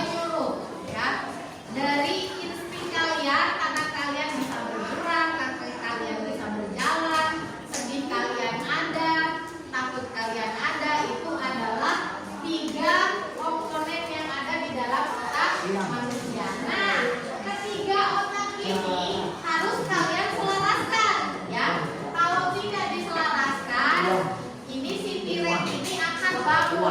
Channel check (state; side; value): identical; both; correlation 1.00